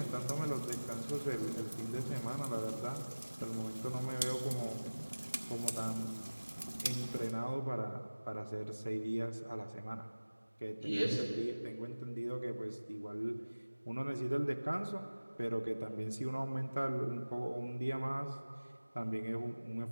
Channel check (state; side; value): inverted; both; correlation -1.00